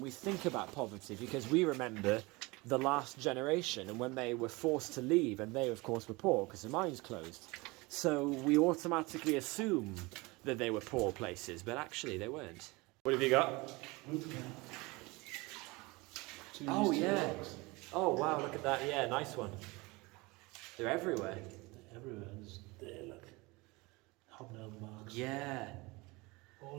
we think about poverty because we remember the last generation and when they were forced to leave, and they, of course, were poor because the mines closed. So we automatically assume that they were poor places, but actually they weren't. What have you got? Oh, yeah. Oh, wow, look at that. Yeah, nice one. They're everywhere. Everywhere. There, look. Hobnail marks. Yeah.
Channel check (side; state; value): left; quieter; 24.2 dB